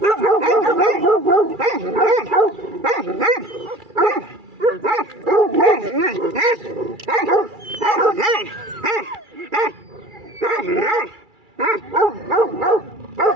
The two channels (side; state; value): left; late; 2.3 ms